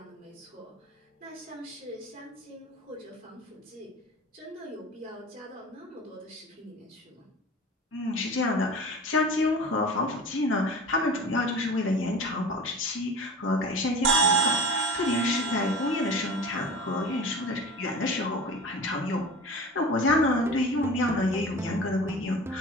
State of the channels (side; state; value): both; normal; correlation 0.36